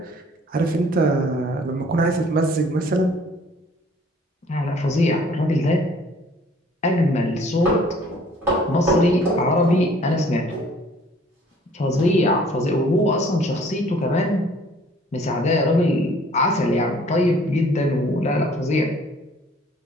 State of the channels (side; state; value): both; normal; correlation 0.55